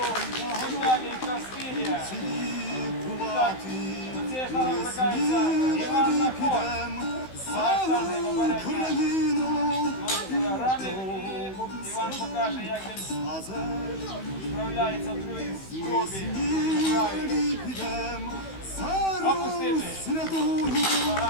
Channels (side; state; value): right; late; 16 ms